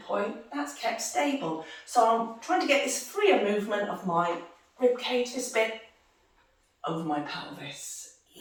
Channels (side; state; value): both; identical; correlation 1.00